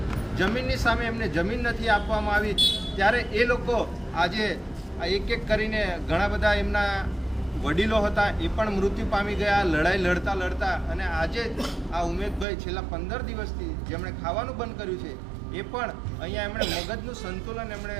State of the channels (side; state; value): left; drops out; at 12.5 s